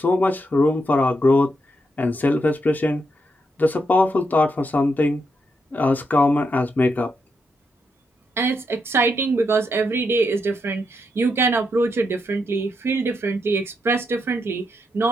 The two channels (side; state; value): both; normal; correlation 0.81